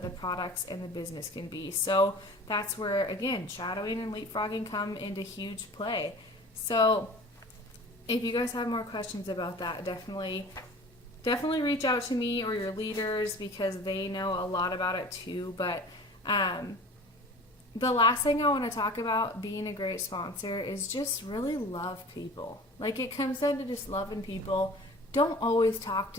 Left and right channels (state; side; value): normal; both; correlation 0.42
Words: the products and the business can be. So that's where, again, shadowing and leapfrogging come into huge play. So if you guys have more questions about that, definitely reach out to me or your leaders, because they know a lot about it too. But the last thing I want to talk about being a great sponsor is just really love people. Like, it comes down to just loving people. Don't always talk